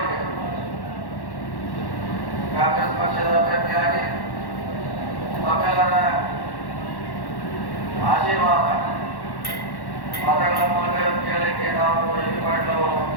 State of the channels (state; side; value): late; right; 1.1 ms